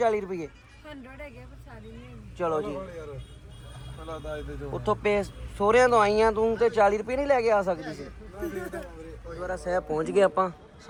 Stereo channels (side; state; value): both; identical; correlation 1.00